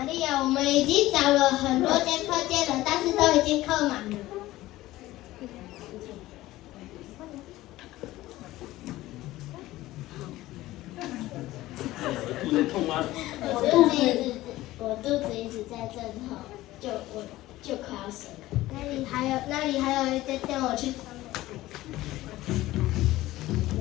利亚，我们已经找了很多间客店了，但是都已经客满了。肚子痛吗？我肚子一直在阵痛，我就快要生了。那里还有一间店，我去。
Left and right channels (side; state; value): right; quieter; 16.8 dB